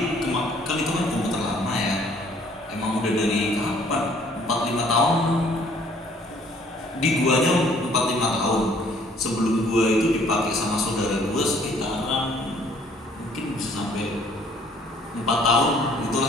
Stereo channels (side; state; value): both; normal; correlation 0.59